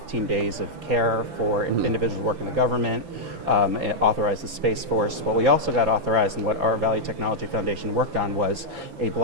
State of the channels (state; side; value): late; left; 6.0 ms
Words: days of care for individuals working in the government. It authorized the Space Force. What we also got authorized and what our Value Technology Foundation worked on was a